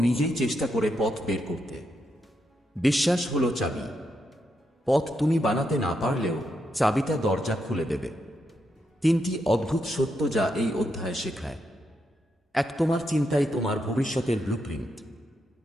নিজেই চেষ্টা করে পথ বের করতে। বিশ্বাস হলো চাবি। পথ তুমি বানাতে না পারলেও চাবিটা দরজা খুলে দেবে। 3টি অদ্ভুত সত্য যা এই অধ্যায় শেখায়। 1, তোমার চিন্তাই তোমার ভবিষ্যতের ব্লুপ্রিন্ট।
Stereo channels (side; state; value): both; normal; correlation 0.82